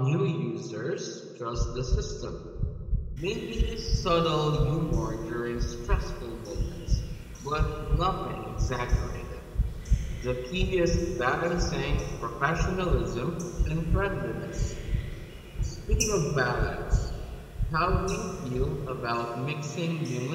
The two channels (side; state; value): both; identical; correlation 1.00